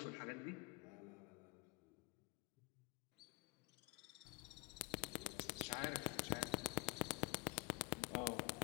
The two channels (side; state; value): right; quieter; 27.4 dB